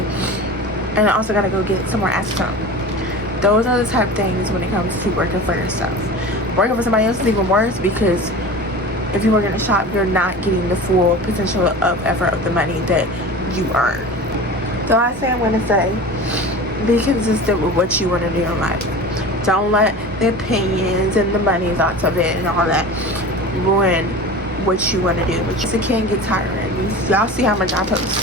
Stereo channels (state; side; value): normal; both; correlation 0.34